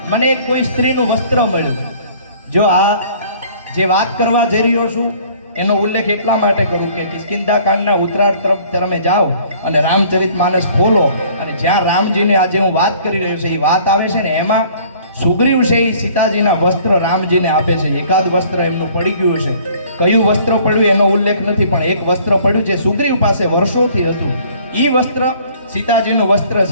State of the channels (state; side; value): inverted; both; correlation -0.55